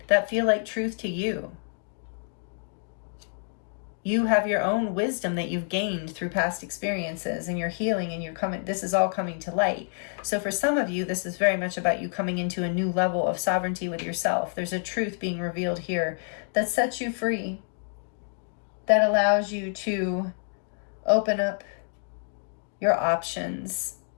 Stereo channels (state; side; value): silent; right; 60 dB below the other